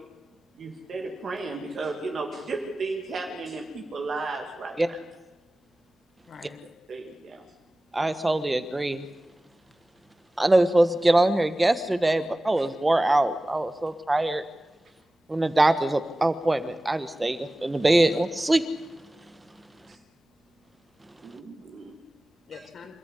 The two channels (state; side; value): normal; both; correlation 0.97